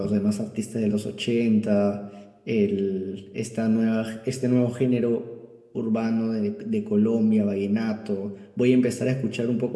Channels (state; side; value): identical; both; correlation 1.00